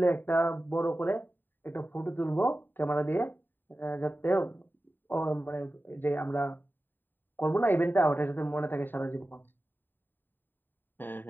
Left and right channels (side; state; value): right; late; 0.093 ms